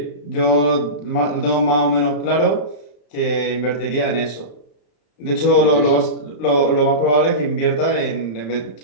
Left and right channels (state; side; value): late; right; 34 ms